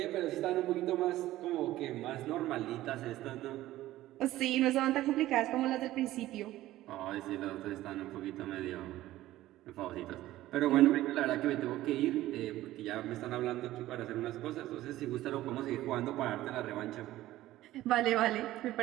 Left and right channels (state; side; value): quieter; left; 15.4 dB